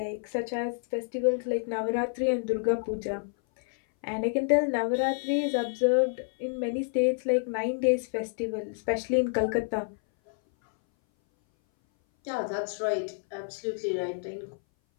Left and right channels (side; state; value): right; silent; 58 dB below the other